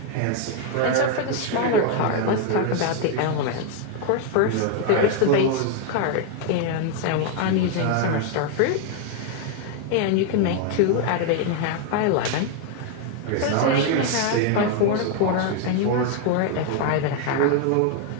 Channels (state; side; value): different; both; correlation 0.01